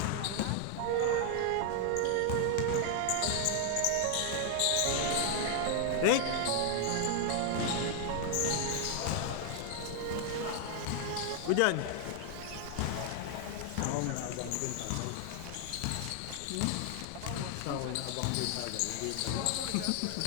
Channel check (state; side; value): different; both; correlation 0.00